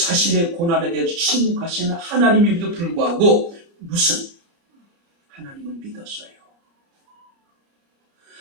고난에 대해서 침묵하시는 하나님임에도 불구하고 무슨 하나님을 믿었어요.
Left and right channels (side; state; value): left; late; 29 ms